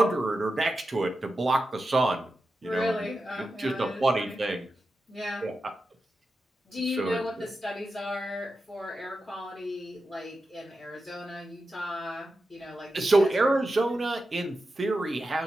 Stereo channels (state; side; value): normal; both; correlation 0.91